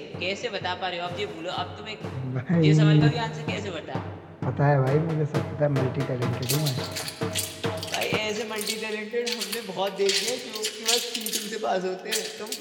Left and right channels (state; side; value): identical; both; correlation 1.00